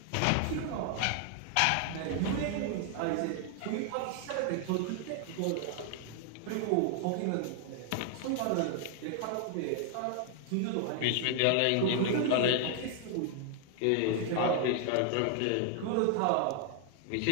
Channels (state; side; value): different; both; correlation 0.00